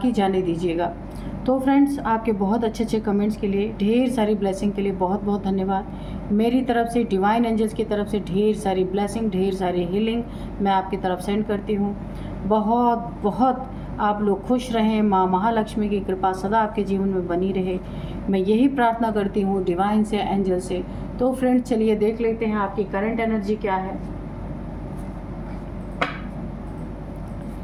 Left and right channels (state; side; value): identical; both; correlation 1.00